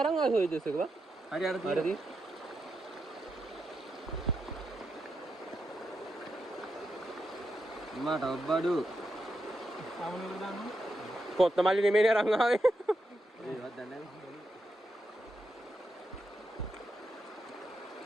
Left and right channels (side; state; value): both; normal; correlation 0.85